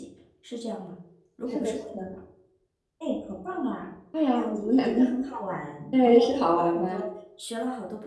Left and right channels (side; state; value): both; identical; correlation 1.00